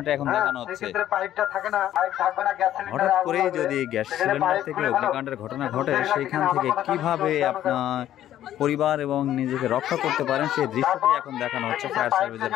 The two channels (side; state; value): right; quieter; 12.1 dB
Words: এখন দেখানো হচ্ছে। হঠাৎ করেই যদি গ্যাস সিলিন্ডার থেকে অগ্নিকাণ্ডের ঘটনা ঘটে সেইখান থেকে কিভাবে আপনার পরিবার এবং নিজেকে রক্ষা করতে পারেন সেই দৃশ্যটি এখন দেখানো হচ্ছে ফায়ার সার্ভিসের